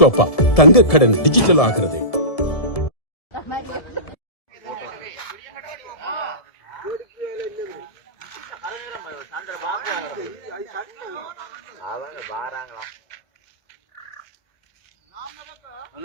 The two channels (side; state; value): right; late; 1.7 ms